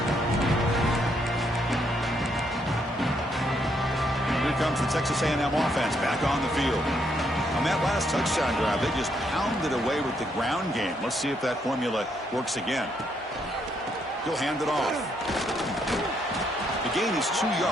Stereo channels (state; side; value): normal; both; correlation 0.74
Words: Here comes the Texas A&M offense back on the field. On that last touchdown drive, they just pounded away with the ground game. Let's see if that formula works again. He'll hand it off. The gain is 2